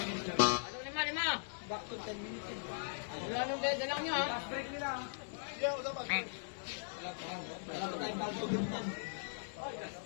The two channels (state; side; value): silent; right; digital silence